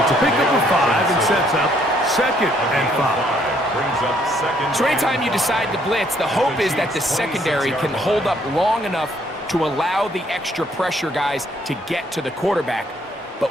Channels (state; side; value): normal; both; correlation 0.67